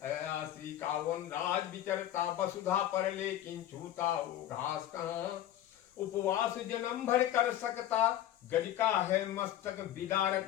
अयासी का। वनराज विचरता वसुधा पर लेकिन छूता वो घास कहाँ, उपवास जन्म भर कर सकता गज का है मस्तक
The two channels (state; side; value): quieter; right; 12.4 dB